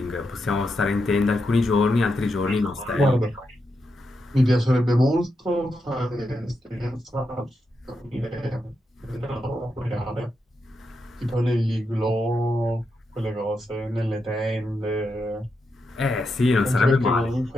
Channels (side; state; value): both; normal; correlation 0.85